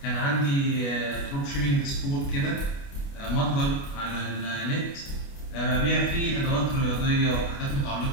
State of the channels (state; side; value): late; right; 29 ms